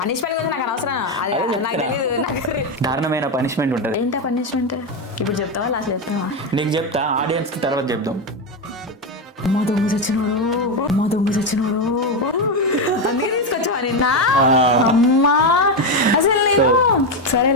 గురించి నాకు అనవసరం. నాకు తెలియదు. దారుణమైన పనిష్మెంట్ ఉంటుంది. ఏంటా పనిష్మెంట్? ఇప్పుడు చెప్తావా లాస్ట్ చెప్తావా? నీకు చెప్తా, ఆడియన్స్ కి తర్వాత చెప్దాం. మా దొంగ చచ్చినోడు అందుకే తీసుకొచ్చావా నిన్న? అమ్మా అసలు నేను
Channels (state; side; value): normal; both; correlation 0.10